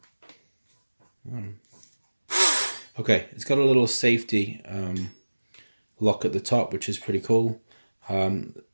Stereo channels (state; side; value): inverted; both; correlation -1.00